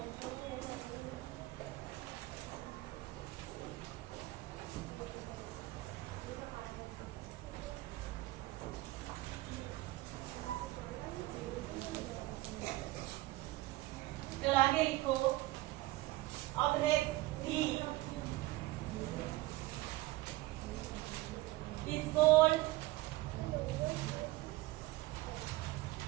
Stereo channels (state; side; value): quieter; left; 18.7 dB